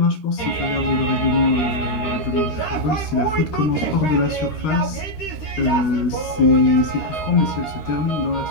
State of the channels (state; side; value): late; right; 13 ms